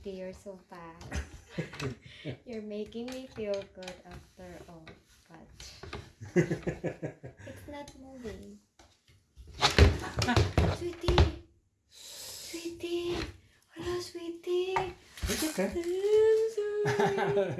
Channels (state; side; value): identical; both; correlation 1.00